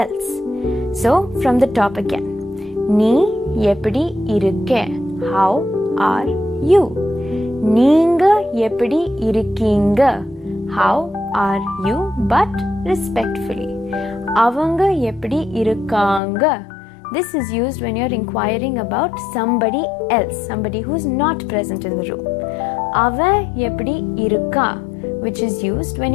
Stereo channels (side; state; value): right; drops out; at 16.2 s